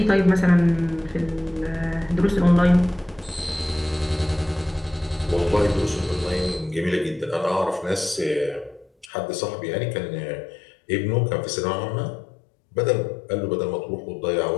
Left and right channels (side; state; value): right; drops out; at 9.1 s